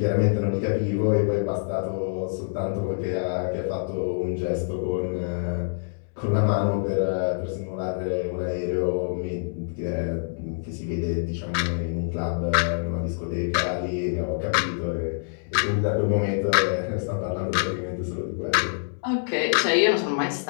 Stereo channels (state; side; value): silent; right; digital silence